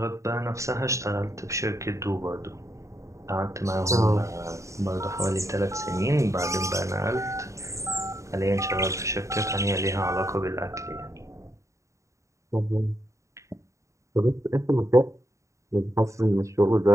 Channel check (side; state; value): left; late; 0.15 ms